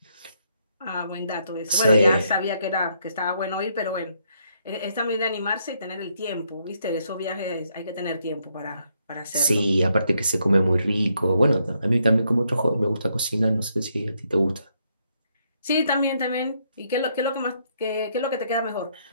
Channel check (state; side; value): inverted; both; correlation -0.75